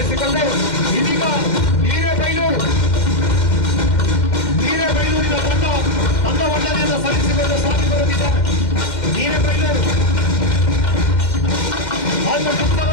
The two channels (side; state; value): right; late; 2.1 ms